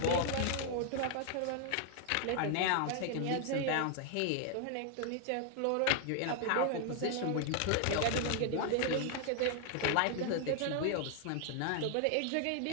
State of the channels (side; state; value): both; different; correlation 0.00